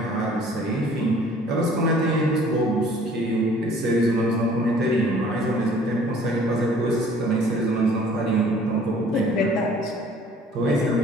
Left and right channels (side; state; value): both; normal; correlation 0.54